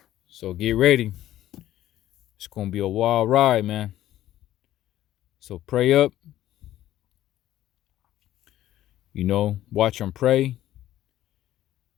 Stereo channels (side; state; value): right; quieter; 13.5 dB